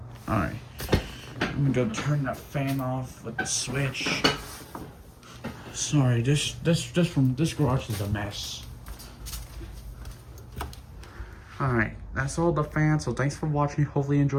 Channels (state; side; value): identical; both; correlation 1.00